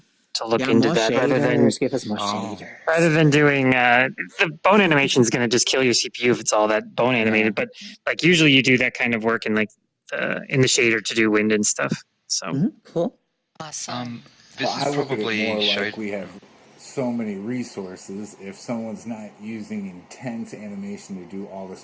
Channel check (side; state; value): both; identical; correlation 1.00